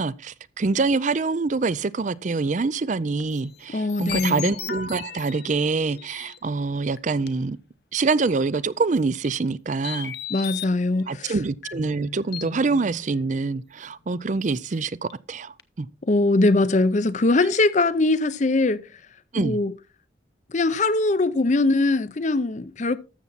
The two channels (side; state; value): both; normal; correlation 0.48